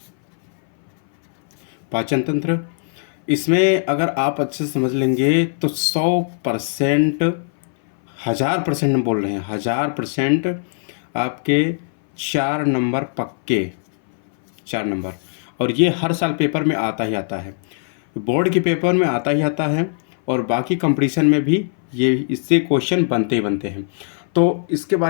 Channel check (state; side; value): silent; right; 61 dB below the other